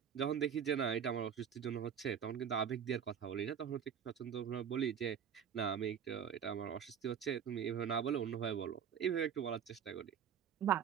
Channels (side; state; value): left; quieter; 8.1 dB